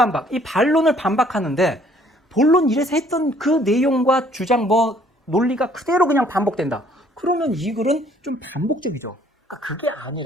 이 반론을 반박하는데 본론 1에서 했던 그 내용과 주장 논리가 그대로 그냥 반복된다. 그러면 이 글은 좀 반복적이죠. 그러니까 그게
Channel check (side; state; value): both; normal; correlation 0.61